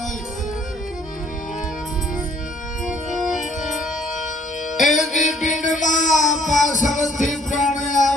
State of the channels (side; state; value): both; normal; correlation 0.62